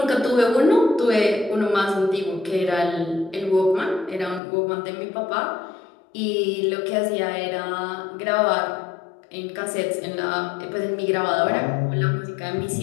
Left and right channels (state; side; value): drops out; right; at 4.4 s